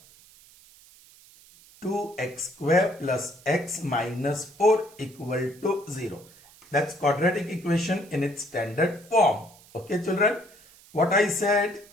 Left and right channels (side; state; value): right; noise; hiss, 25 dB below the sound